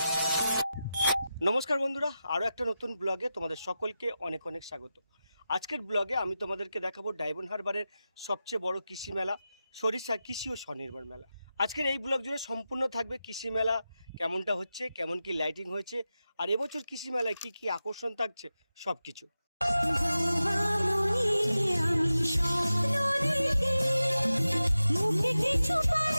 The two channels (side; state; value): both; inverted; correlation -0.92